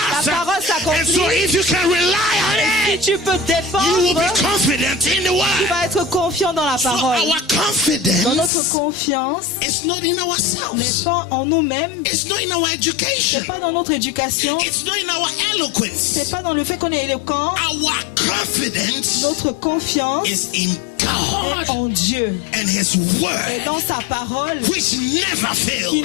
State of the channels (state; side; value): drops out; right; at 8.5 s